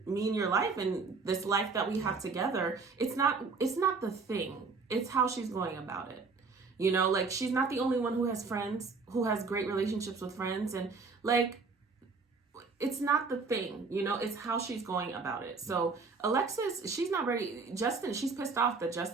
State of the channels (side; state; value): left; quieter; 4.5 dB